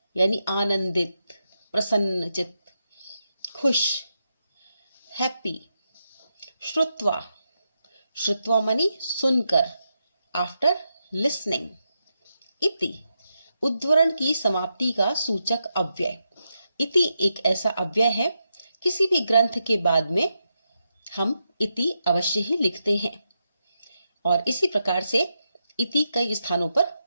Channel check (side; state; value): both; inverted; correlation -0.85